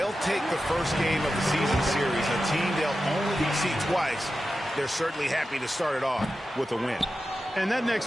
take the first game of the season series, a team they'll only see twice. They're certainly happy to start it off with a win. And that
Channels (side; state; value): both; normal; correlation 0.92